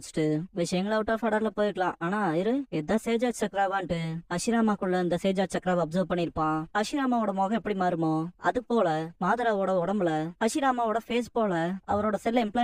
விஷயங்கள் அவுட் ஆஃப் ஆர்டர்ல போயிருக்கலாம், ஆனா இதான் சேஜா சக்ராவான்ட்டு ஹஷிராமாக்குள்ள இந்த சேஜா சக்ராவை அப்சர்வ் பண்ணிருப்பான். ஹஷிராமாவோட முகம் எப்படி மாறுமோ அது போல மாதராவோட உடம்புல ஹஷிராமாவோட ஃபேஸ் போல அவரோட செல்ல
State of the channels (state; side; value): identical; both; correlation 1.00